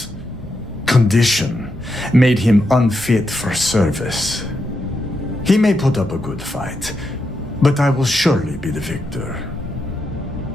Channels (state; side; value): normal; both; correlation 0.84